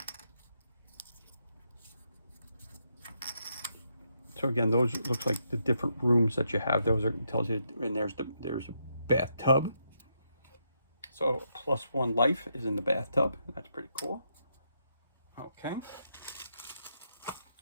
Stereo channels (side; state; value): both; inverted; correlation -0.79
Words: So again, those looks like the different rooms that you have. Those are tells you, and there's a bathtub. So +1 life is in the bathtub. That's pretty cool. Okay.